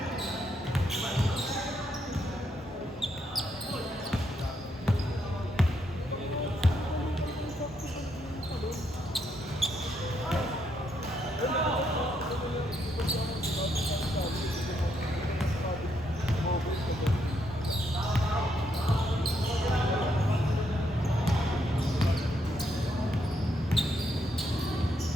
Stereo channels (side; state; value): both; normal; correlation 0.77